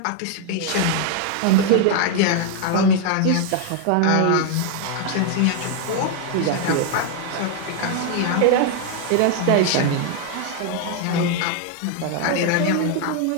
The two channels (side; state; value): both; different; correlation 0.00